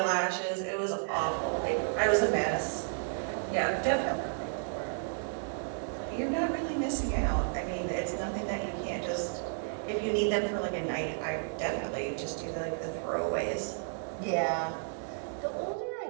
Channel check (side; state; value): left; silent; digital silence